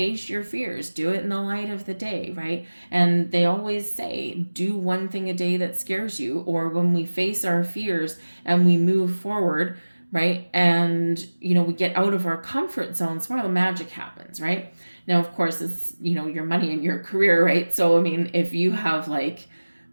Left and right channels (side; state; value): both; inverted; correlation -1.00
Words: your fears. Do it in the light of the day, right? And they always say, do one thing a day that scares you. Or when we face our fears and we move forward, right? And, we get out of our comfort zones, where the magic happens, right? Now, of course, it's, your money and your career, right? So, I mean, if you have like